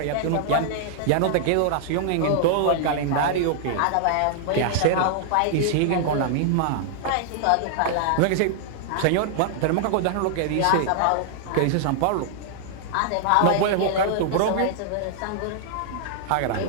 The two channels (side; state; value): both; different; correlation -0.01